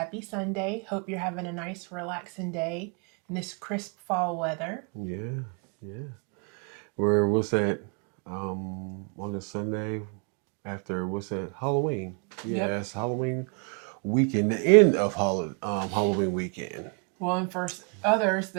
Sunday. Hope you're having a nice, relaxing day in this crisp fall weather. Yeah, yeah. What's that? On a Sunday after what's that? Halloween. Yep. Yeah, it's Halloween weekend, the end of Halloween weekend. Well, and for others,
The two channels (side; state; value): left; quieter; 37.7 dB